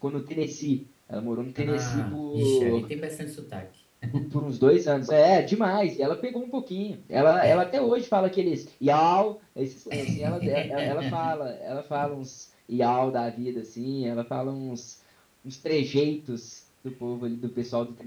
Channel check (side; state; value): both; identical; correlation 1.00